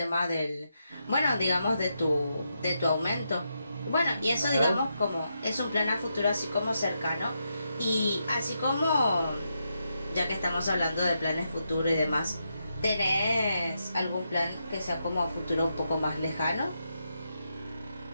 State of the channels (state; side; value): inverted; both; correlation -0.83